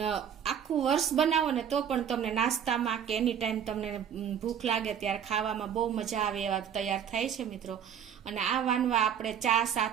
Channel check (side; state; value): left; quieter; 8.5 dB